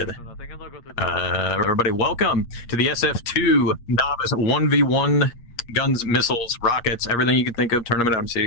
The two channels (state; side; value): late; right; 8.5 ms